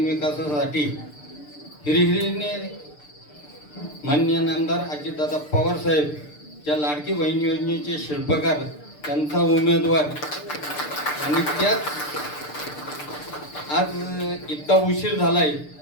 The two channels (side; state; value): right; late; 6.7 ms